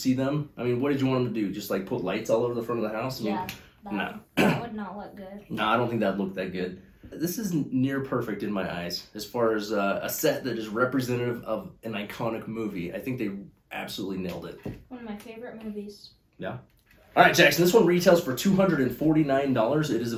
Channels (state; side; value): identical; both; correlation 1.00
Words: them. I mean, what did you want them to do? Just like put lights all over the front of the house? Yeah, that would not look good. No, I don't think that'd look that good. This is near perfect in my eyes as far as a set that is representative of an iconic movie. I think they absolutely nailed it. One of my favorite movies. Yeah. All right, Jackson, this one retails for $249. It is